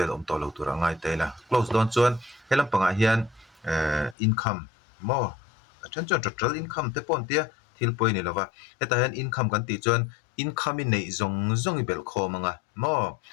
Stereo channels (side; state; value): right; drops out; at 4.2 s